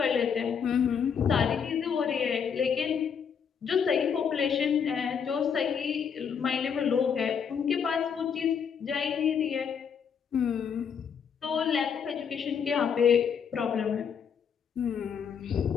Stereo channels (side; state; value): right; quieter; 7.1 dB